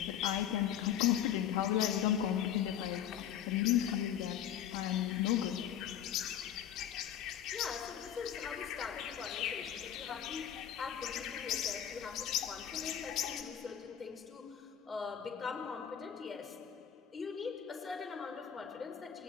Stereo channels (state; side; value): quieter; right; 9.8 dB